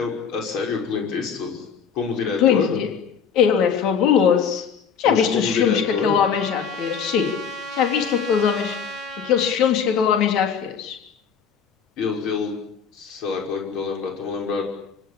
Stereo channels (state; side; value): quieter; right; 6.9 dB